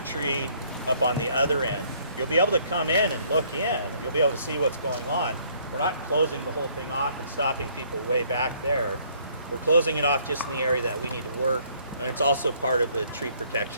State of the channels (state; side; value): inverted; both; correlation -0.64